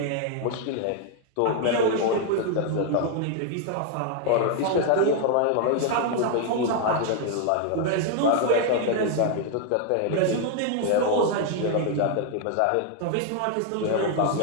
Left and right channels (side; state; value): both; different; correlation 0.00